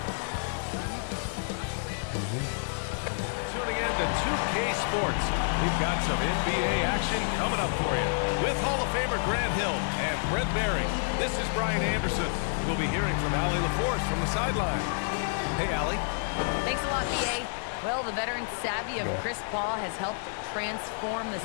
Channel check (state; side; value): silent; right; digital silence